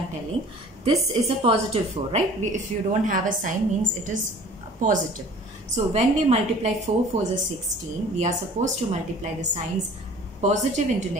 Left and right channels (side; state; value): both; normal; correlation 0.47